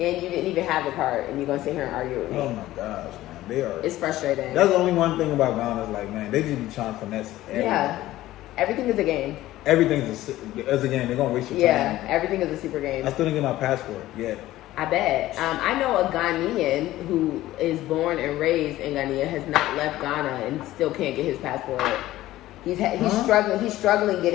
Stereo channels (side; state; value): right; quieter; 15.5 dB